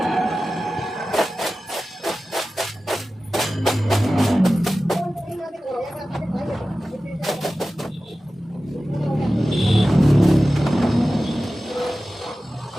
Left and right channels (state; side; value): normal; both; correlation 0.95